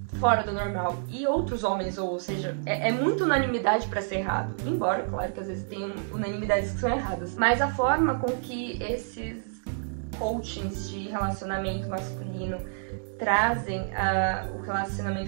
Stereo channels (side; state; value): left; silent; digital silence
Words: fora do normal. E outros homens, ou seja, é muita unanimidade pra ser errado. Embora, claro, que às vezes tem unanimidades que são erradas. Mas a forma com que esses coachings de relacionamento masculino trazem o